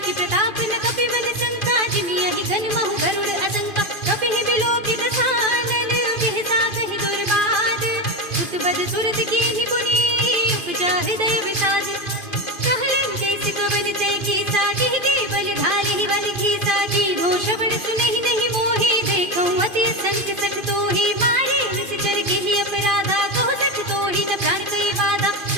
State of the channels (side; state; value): right; late; 2.5 ms